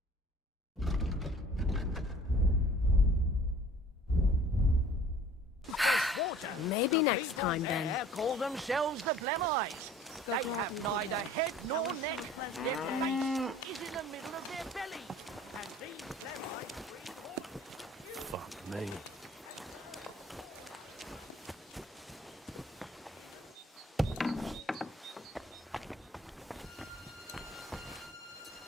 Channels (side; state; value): both; normal; correlation 0.50